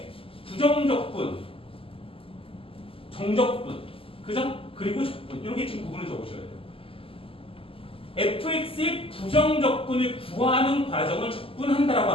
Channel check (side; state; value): right; late; 0.26 ms